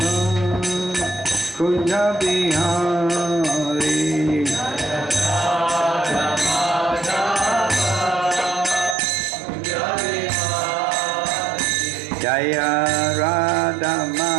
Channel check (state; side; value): drops out; left; at 9.0 s